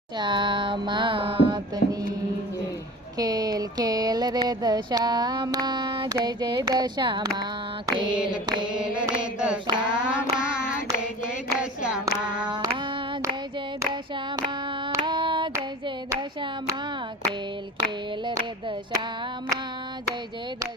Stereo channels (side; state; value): both; normal; correlation 0.37